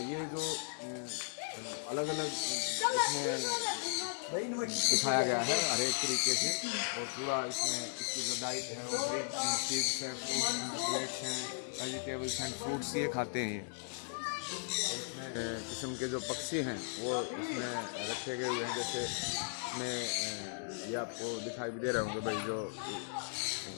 ये जो अलग अलग इसमें दिखाया गया है हर एक तरीके से। और पूरा इसमें इसकी जो डाइट है वो ग्रीन सीड्स हैं, फ्रूट्स हैं, वेजिटेबल्स एंड फ्रूट्स ये खाते हैं ये। इसमें किस्म के जो पक्षी हैं वो इसमें रखे गए हुए हैं। जैसे इसमें ये आपको दिखाई भी दे रहे होंगे भाई, जो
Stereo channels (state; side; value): silent; right; digital silence